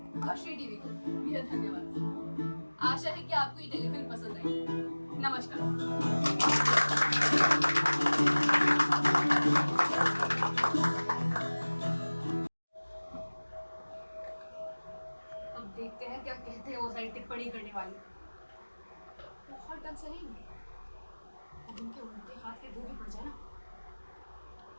और श्री टीवी को मेरा धन्यवाद। आशा है कि आपको ये टेलीफिल्म पसंद आई। नमस्कार। अब देखते हैं क्या कहते हैं वो सारी टिप्पणी करने वाले। बहुत टक सही, अब उनके उल्टे हाथ के दो भी पड़ जाए ना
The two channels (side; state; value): both; inverted; correlation -1.00